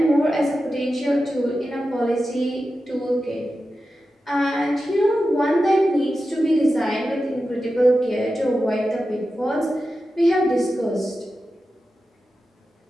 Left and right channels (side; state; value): both; normal; correlation 0.92